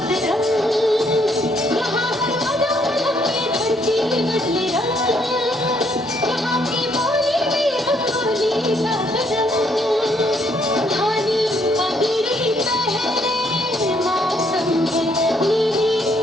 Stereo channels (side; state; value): both; normal; correlation 0.69